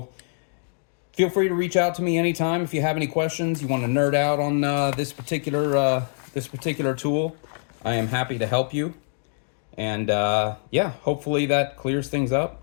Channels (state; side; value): silent; right; digital silence